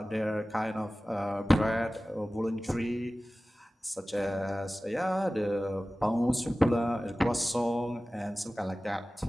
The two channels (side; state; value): both; normal; correlation 0.97